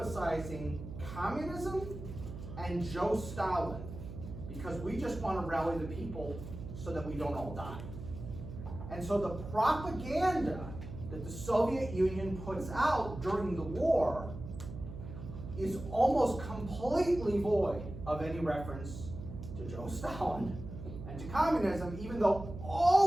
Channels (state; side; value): noise; right; hum, 10 dB below the sound